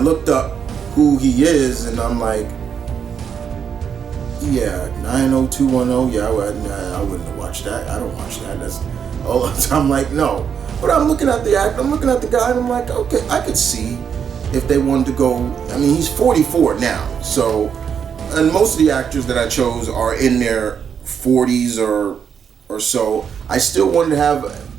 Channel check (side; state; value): left; quieter; 7.4 dB